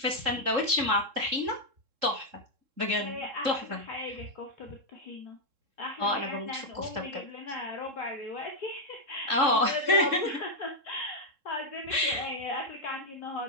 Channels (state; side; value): late; left; 3.7 ms